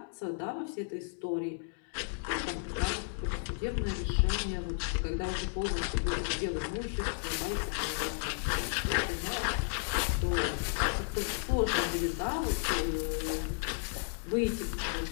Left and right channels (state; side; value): silent; right; digital silence